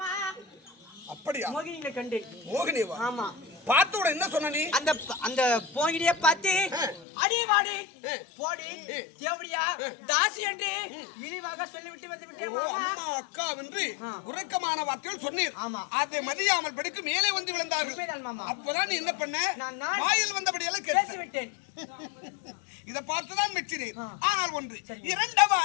அப்படியா? மோகினியை கண்டேன். மோகினிவா? ஆமா. பார்த்தோட என்ன சொன்ன நீ? அந்த மோகினியை பார்த்து அடி வாடி போடி தேவடியா தாசி என்று இழிவாக சொல்லிவிட்டு வந்து விட்டேன் மாமா. அம்மா அக்கா என்று உறக்கமான வார்த்தைகள் சொன்னீர். ஆமா. அதை மதியாமல் படுக்கு மேலே வந்து விழுந்தார்கள். அப்பதான் நீ என்ன பண்ண? வாயில் வந்தபடியெல்லாம் பேசி விட்டேன். இதை பார்த்துதான் மெச்சினேன். ஆனால் ஒன்று இரண்டவ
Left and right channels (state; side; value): drops out; right; at 7.1 s